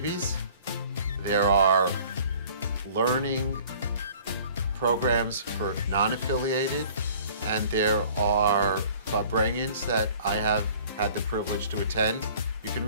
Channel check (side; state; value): both; inverted; correlation -0.50